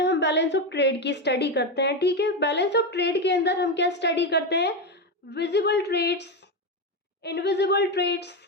हम बैलेंस ऑफ ट्रेड की स्टडी करते हैं, ठीक है। बैलेंस ऑफ ट्रेड के अंदर हम क्या स्टडी करते हैं, visible trades, invisible trades,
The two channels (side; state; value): both; normal; correlation 0.12